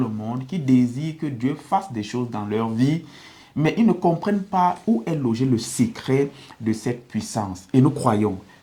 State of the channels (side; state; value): both; identical; correlation 1.00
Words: monde qui désirent que Dieu fasse des choses dans leur vie, mais ils ne comprennent pas où est logé le secret de cette puissance. Et nous croyons